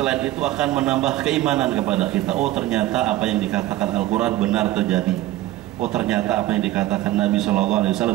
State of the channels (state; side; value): quieter; left; 15.6 dB